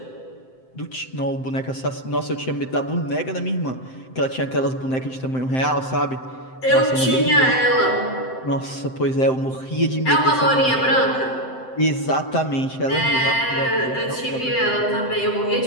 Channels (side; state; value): right; late; 7.7 ms